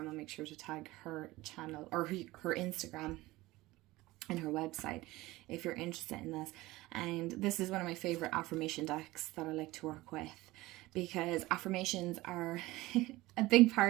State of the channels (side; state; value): left; quieter; 19.2 dB